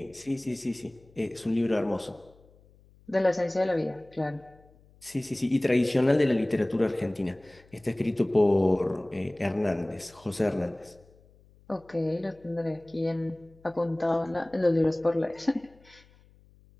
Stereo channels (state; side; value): noise; left; hum, 28 dB below the sound